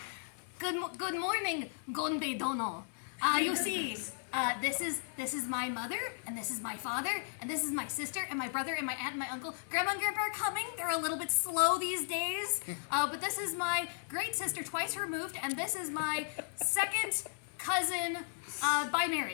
good morning, Gonbei Dono. You see, this is my mother, and this is my father, and this is my sister, and my brother, and my aunt, and my uncle. Grandma and Grandpa are coming. They're a little bit slow these days. But this is my great sister, twice removed, and this is my second cousin by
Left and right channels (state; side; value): silent; right; 54 dB below the other